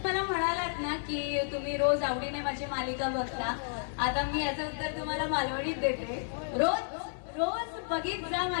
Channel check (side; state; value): right; silent; digital silence